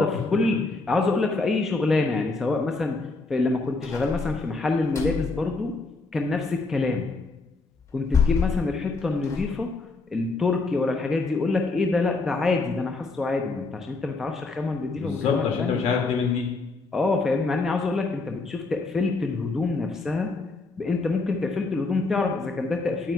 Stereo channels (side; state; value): right; quieter; 3.5 dB